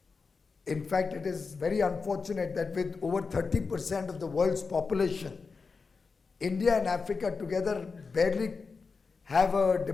In fact, it is very unfortunate that with over 30% of the world's population, India and Africa together barely have a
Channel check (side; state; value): right; quieter; 4.7 dB